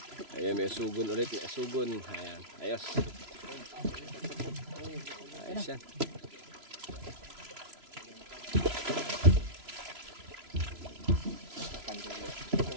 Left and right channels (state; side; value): late; left; 3.0 ms